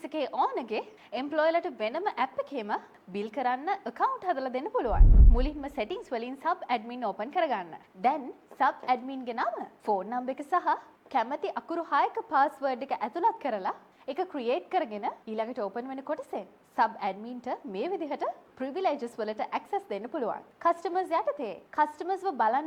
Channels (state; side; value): identical; both; correlation 1.00